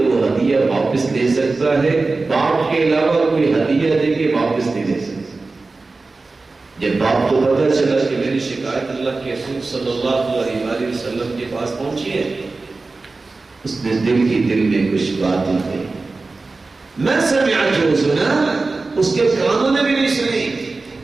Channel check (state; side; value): quieter; left; 3.7 dB